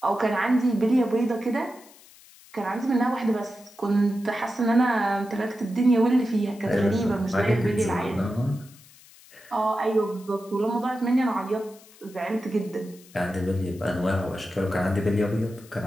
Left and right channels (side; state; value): left; noise; hiss, 24 dB below the sound